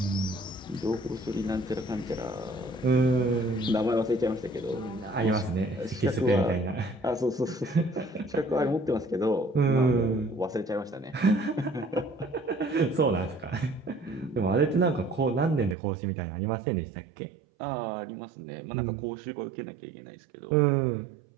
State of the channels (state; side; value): drops out; left; at 15.8 s